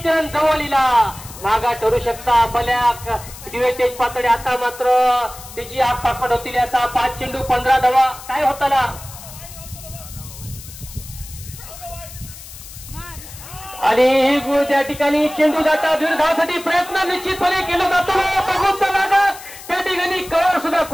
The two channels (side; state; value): left; noise; hiss, 15 dB below the sound